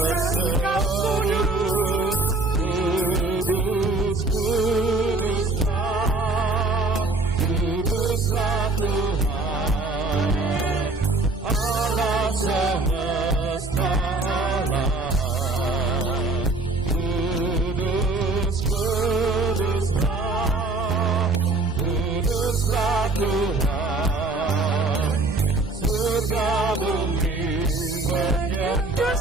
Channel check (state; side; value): quieter; left; 3.3 dB